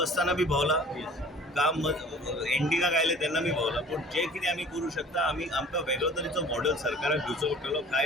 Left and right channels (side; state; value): both; normal; correlation 0.48